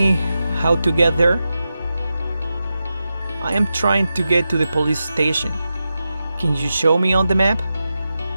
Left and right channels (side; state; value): both; inverted; correlation -0.91